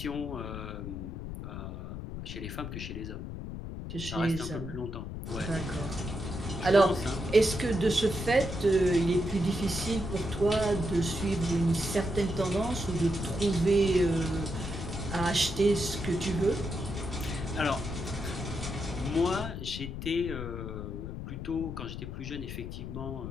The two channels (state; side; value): noise; left; rumble, 7 dB below the sound